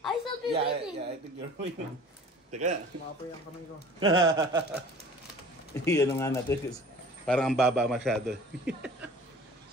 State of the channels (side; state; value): both; normal; correlation 0.46